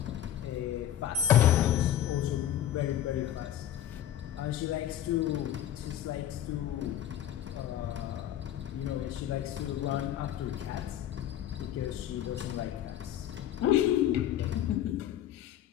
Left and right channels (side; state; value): right; quieter; 11.3 dB